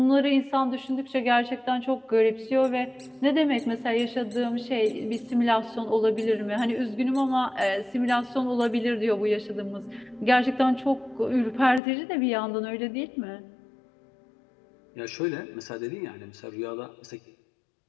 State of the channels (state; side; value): drops out; right; at 11.8 s